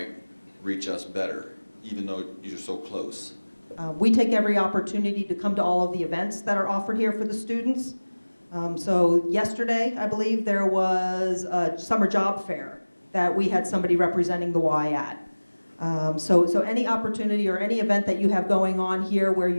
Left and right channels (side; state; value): both; inverted; correlation -1.00